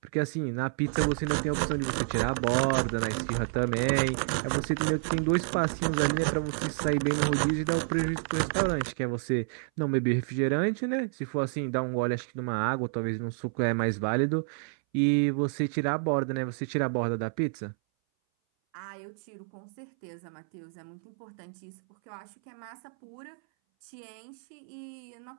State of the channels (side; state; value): left; silent; 58 dB below the other